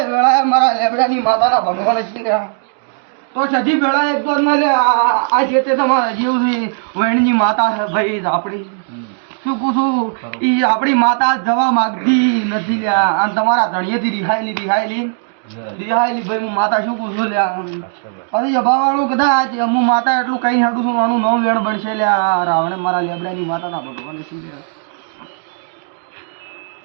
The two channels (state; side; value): silent; left; digital silence